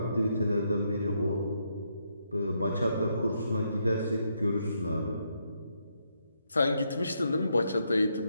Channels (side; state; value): both; inverted; correlation -0.78